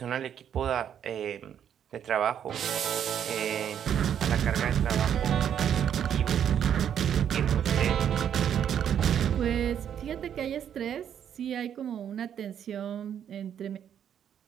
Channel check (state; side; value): quieter; left; 9.1 dB